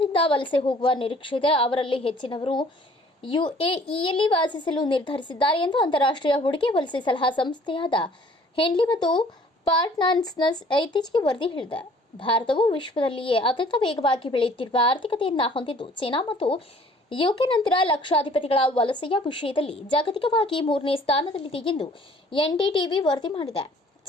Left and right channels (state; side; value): normal; both; correlation 0.54